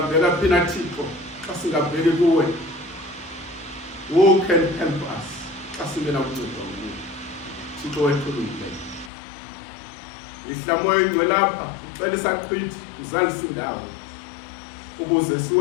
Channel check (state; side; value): drops out; right; at 9.1 s